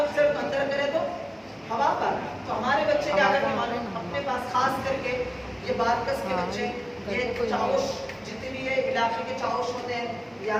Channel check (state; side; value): identical; both; correlation 1.00